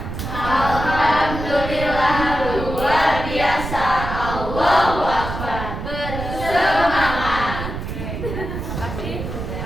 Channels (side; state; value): right; noise; rumble, 6 dB below the sound